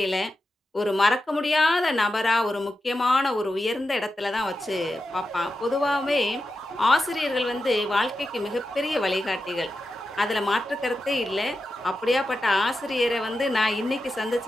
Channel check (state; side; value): normal; both; correlation 0.90